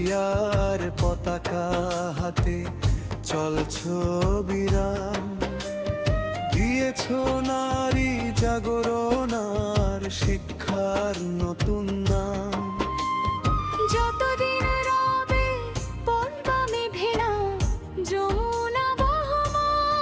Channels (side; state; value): both; identical; correlation 1.00